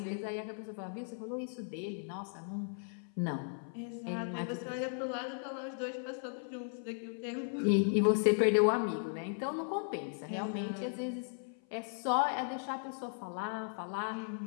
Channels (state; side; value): silent; right; 53 dB below the other